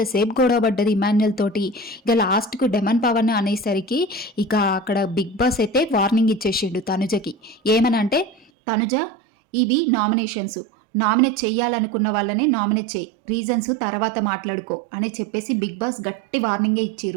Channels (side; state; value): left; drops out; at 8.5 s